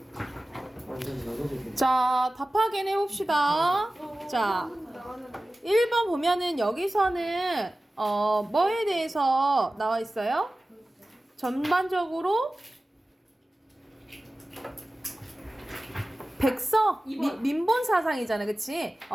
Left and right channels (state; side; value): normal; both; correlation 0.96